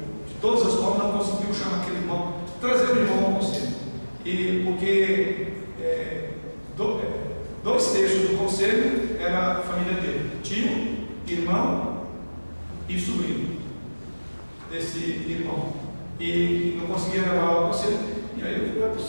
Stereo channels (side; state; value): both; inverted; correlation -1.00